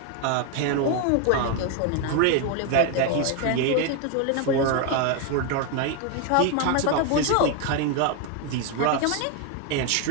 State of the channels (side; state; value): both; different; correlation 0.01